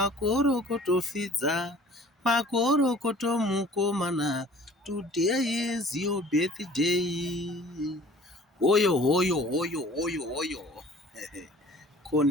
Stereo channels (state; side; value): normal; both; correlation 0.49